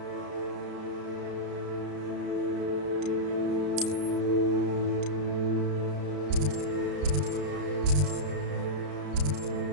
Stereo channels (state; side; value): late; left; 33 ms